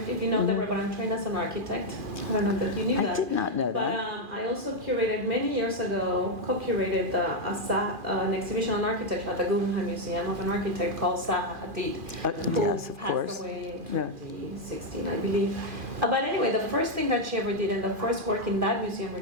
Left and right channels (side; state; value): left; late; 2.4 ms